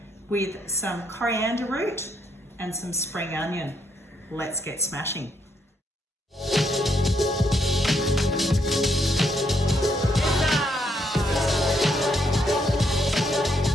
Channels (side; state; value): both; normal; correlation 0.75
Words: with some coriander root and some spring onion. Let's get smashing.